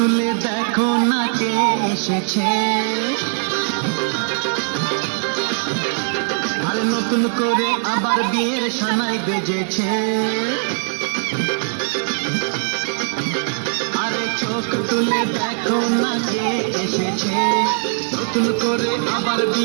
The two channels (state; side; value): silent; left; digital silence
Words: দেখো না কে এসেছে, আরে নতুন করে আবার বিয়ের সানাই বেজেছে। আরে চোখ তুলে দেখো না কে এসেছে, নতুন করে আবার